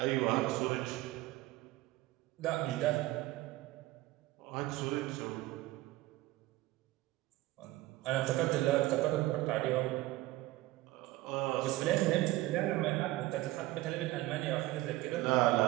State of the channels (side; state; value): left; quieter; 17.7 dB